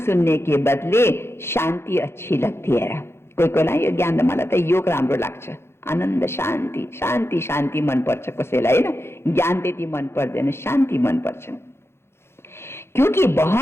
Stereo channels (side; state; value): right; late; 0.12 ms